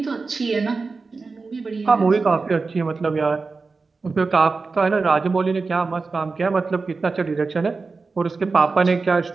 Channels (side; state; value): left; quieter; 4.2 dB